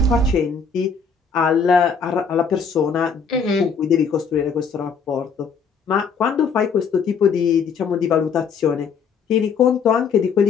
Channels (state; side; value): quieter; right; 5.8 dB